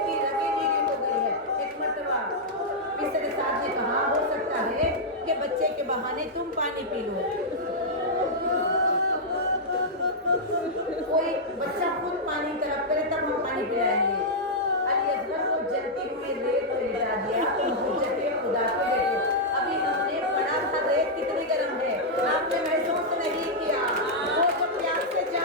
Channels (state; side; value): normal; both; correlation -0.06